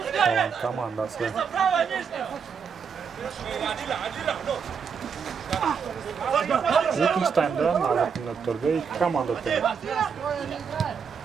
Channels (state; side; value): quieter; left; 6.5 dB